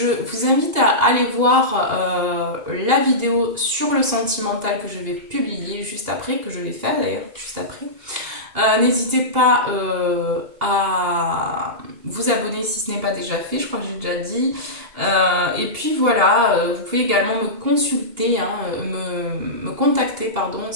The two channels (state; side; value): late; left; 2.8 ms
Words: vous invite à aller voir la vidéo sur le sentimental que je vais publier juste après, que je vais faire d'ailleurs juste après. N'hésitez pas à vous abonner si ce n'est pas déjà fait, je crois que j'ai déjà dit. Et puis voilà, vous pouvez également me consulter, hein, me contacter, pardon,